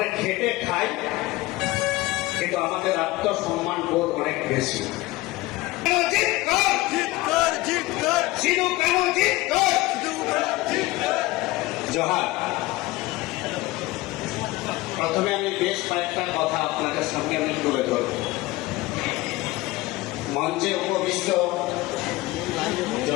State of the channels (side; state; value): right; quieter; 19.5 dB